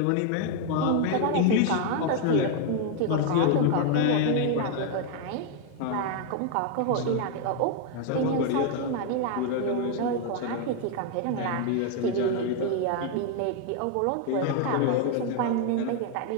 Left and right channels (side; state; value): both; different; correlation 0.00